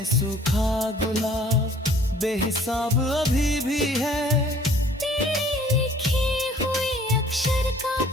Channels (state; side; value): normal; both; correlation 0.55